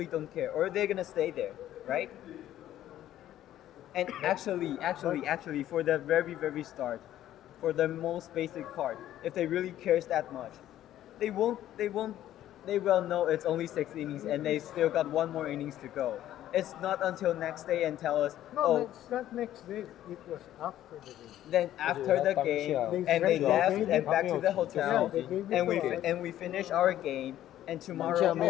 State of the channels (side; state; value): right; quieter; 12.6 dB